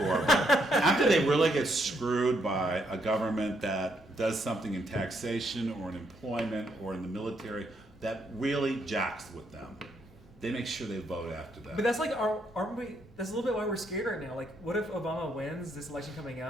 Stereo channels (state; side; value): normal; both; correlation 0.75